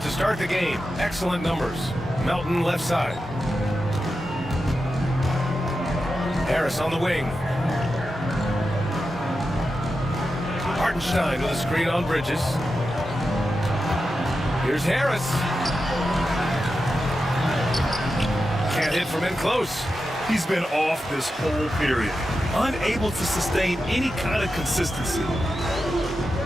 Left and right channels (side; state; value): both; normal; correlation 0.90